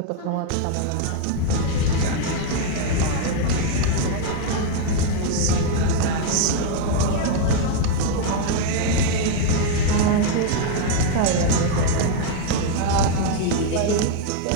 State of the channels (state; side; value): different; both; correlation 0.00